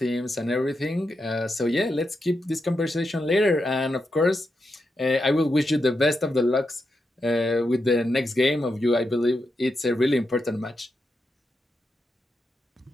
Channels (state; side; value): normal; both; correlation 0.86